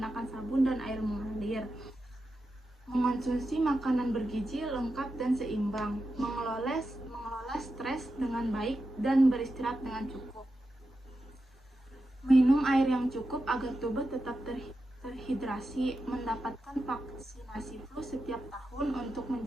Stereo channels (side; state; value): both; normal; correlation 0.89